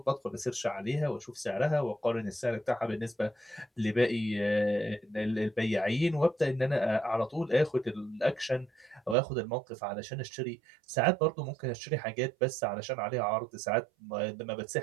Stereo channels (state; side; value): drops out; left; at 9.2 s